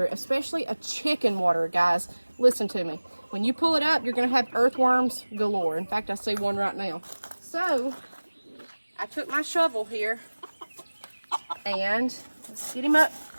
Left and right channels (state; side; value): inverted; both; correlation -1.00